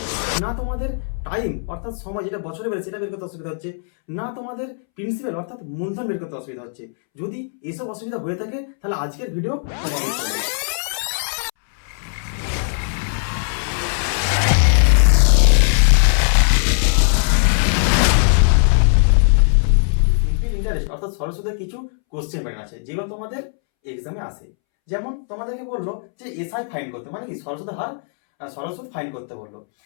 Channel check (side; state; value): right; silent; 66 dB below the other